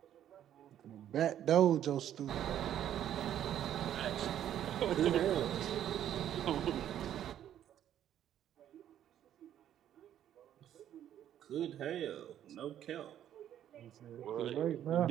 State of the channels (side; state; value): left; quieter; 10.9 dB